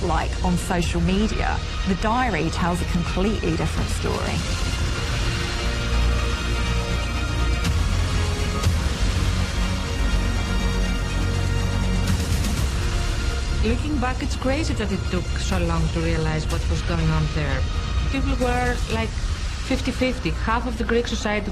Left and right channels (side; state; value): both; identical; correlation 1.00